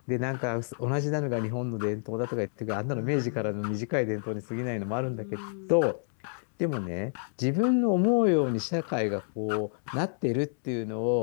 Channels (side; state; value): right; silent; digital silence